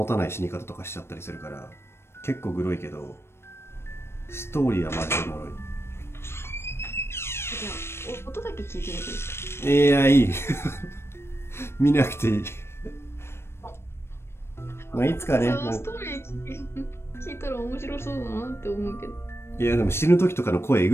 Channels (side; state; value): right; late; 0.12 ms